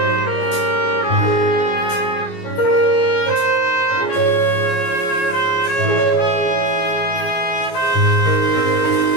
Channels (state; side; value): late; right; 16 ms